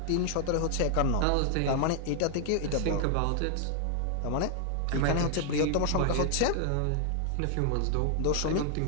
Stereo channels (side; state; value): both; different; correlation 0.00